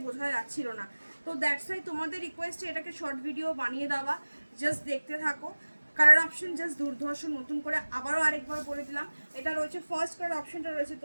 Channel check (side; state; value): both; inverted; correlation -1.00